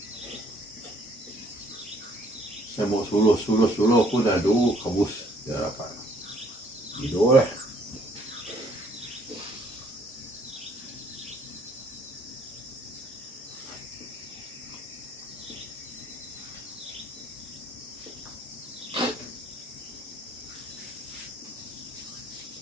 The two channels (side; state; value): both; normal; correlation 0.63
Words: Saya mau suluh aku dah kabus dia dapat. Tidur lah.